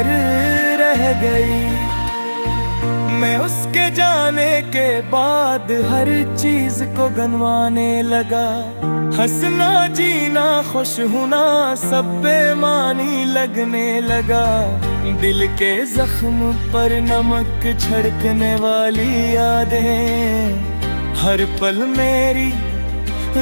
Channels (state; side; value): inverted; both; correlation -1.00